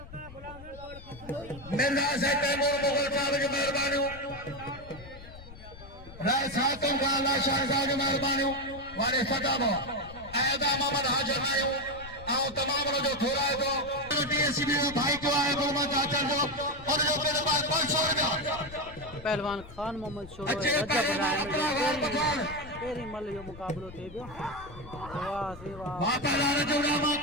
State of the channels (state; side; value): noise; left; rumble, 17 dB below the sound